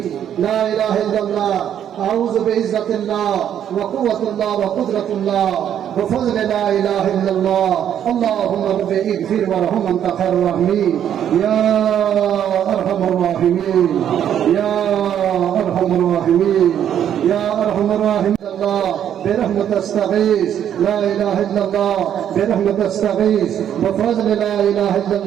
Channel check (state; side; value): quieter; left; 9.7 dB